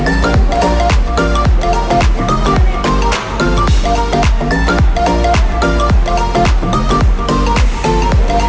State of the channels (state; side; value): identical; both; correlation 1.00